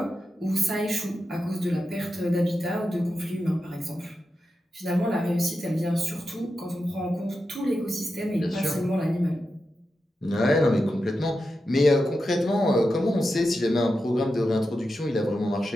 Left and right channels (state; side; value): normal; both; correlation 0.89